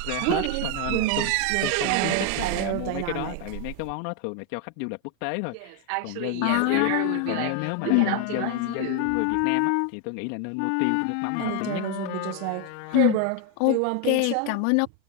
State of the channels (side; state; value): both; different; correlation 0.01